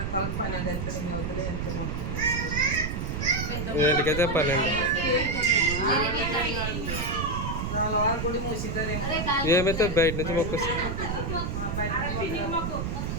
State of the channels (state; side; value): noise; right; rumble, 3 dB below the sound